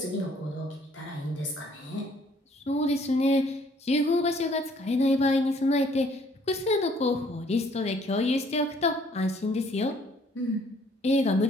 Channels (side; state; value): both; normal; correlation 0.61